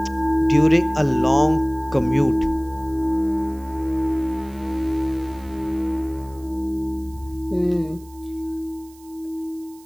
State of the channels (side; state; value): right; noise; hiss, 26 dB below the sound